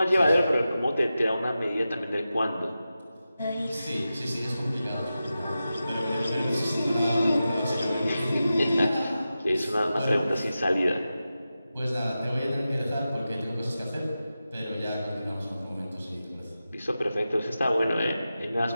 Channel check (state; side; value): inverted; both; correlation -0.92